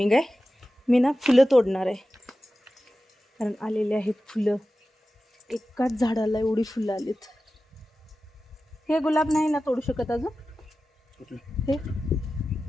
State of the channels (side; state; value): both; normal; correlation 0.94